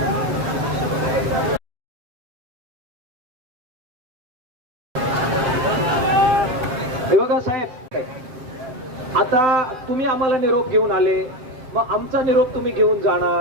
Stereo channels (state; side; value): late; left; 7.4 ms